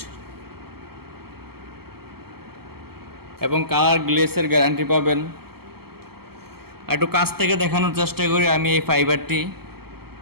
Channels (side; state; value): left; late; 0.95 ms